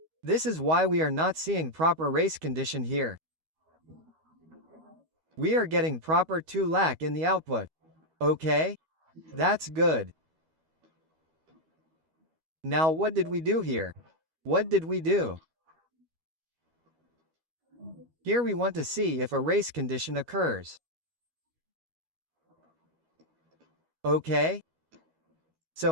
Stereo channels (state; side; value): late; left; 13 ms